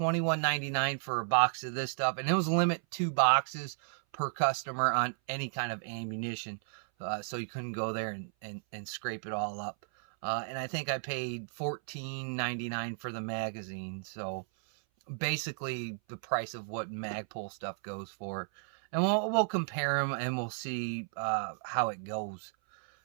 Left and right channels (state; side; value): silent; left; 55 dB below the other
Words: for a box of this stuff, and it was limit 2 boxes per customer on any kind of ammunition, so you couldn't go there and scrape it all up. And I think I paid $14.99 for the magazine, so basically the price of what Magpul stuff goes for. And we'll compare them and we'll see how it goes.